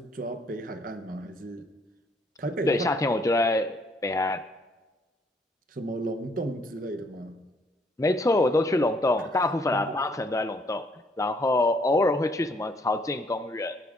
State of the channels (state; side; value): normal; both; correlation 0.66